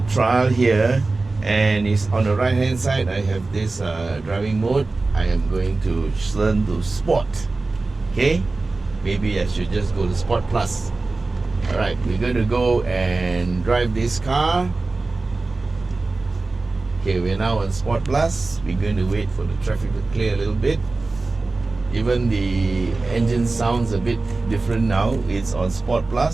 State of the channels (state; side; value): quieter; left; 3.5 dB